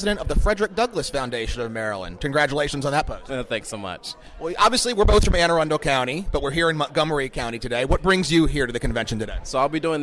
of the Frederick Douglass Foundation of Maryland. Congratulations on that post. Thanks so much. Well, obviously, we're both from Anne Arundel County, but we're here in Montgomery County today. What brings you here to the convention today? So I'll be doing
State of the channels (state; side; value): identical; both; correlation 1.00